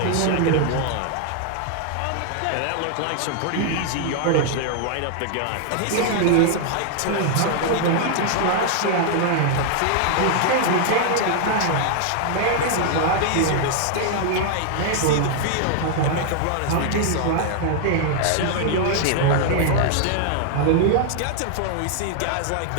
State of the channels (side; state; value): both; different; correlation 0.00